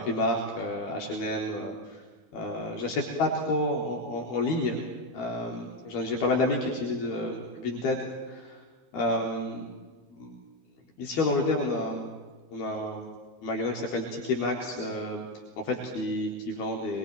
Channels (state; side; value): late; right; 12 ms